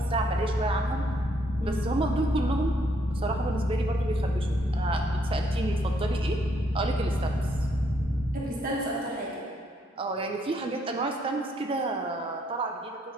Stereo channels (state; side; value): normal; both; correlation 0.71